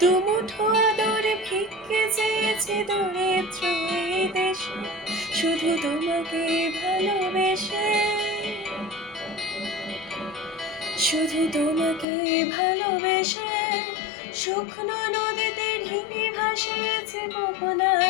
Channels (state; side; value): drops out; right; at 12.1 s